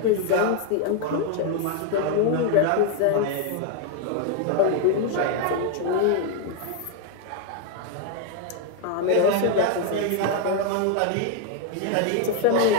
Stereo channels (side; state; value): both; different; correlation 0.00